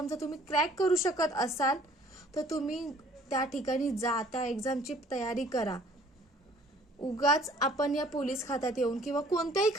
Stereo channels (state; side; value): normal; both; correlation 0.56